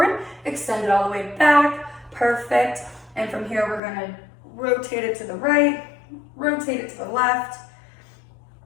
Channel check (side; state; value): right; drops out; at 3.8 s